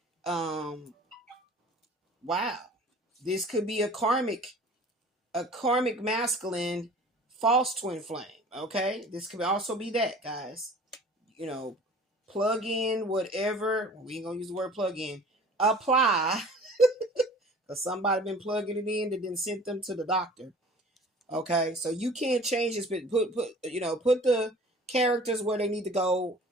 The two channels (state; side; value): normal; both; correlation 0.46